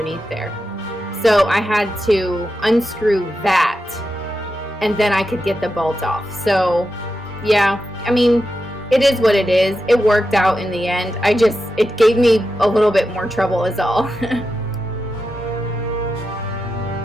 there. So I had to unscrew that and then I could get the bolt off. So yeah, I mean, it is what it is. It worked out in the end. It gave me a little bit more trouble is all.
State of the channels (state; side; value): normal; both; correlation 0.89